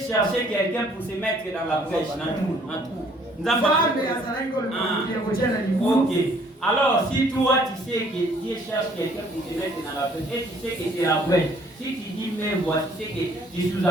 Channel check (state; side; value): normal; both; correlation 0.60